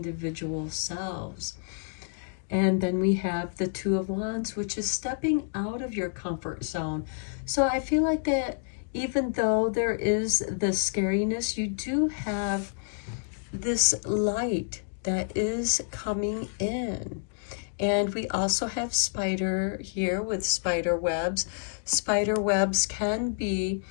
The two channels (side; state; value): right; silent; digital silence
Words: selves. And then we have the Two of Wands, which is stepping out of your comfort zone. So I feel like that even though there is the scariness, you do have this light that is coming in. And we also have spider here with spider webs. Spider webs can be